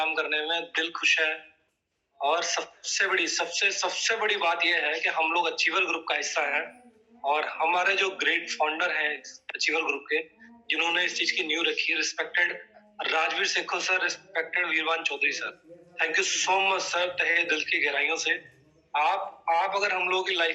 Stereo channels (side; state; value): both; identical; correlation 1.00